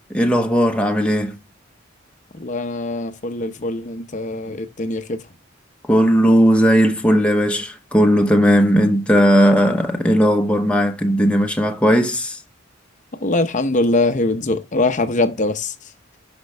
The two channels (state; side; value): normal; both; correlation 0.77